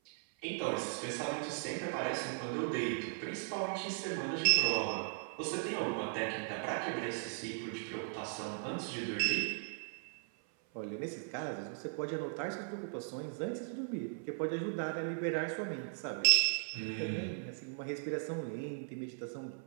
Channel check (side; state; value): left; silent; 53 dB below the other